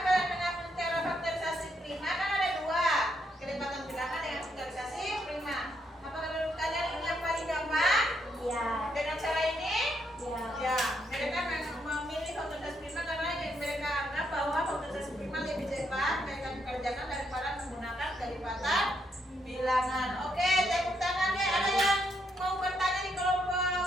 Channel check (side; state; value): both; normal; correlation 0.77